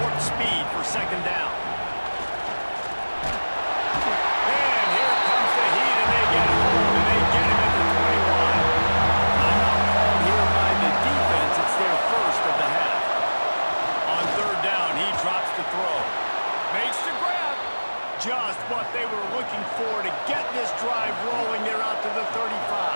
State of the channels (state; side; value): inverted; both; correlation -1.00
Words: warp speed for 2nd down. And here comes the heat, and they get home, and they get him at the 21. Timeout called here by the defense. It's their 1st of the half. On 3rd down, he drops the throw. Makes the grab. Just what they were looking for to get this drive rolling. They're out to the 35.